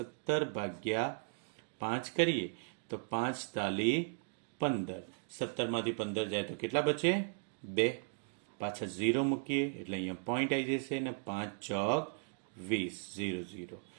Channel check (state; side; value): silent; left; 53 dB below the other